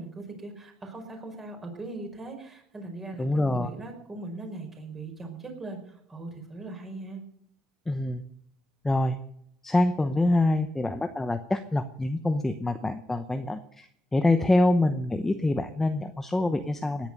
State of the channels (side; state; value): both; normal; correlation 0.92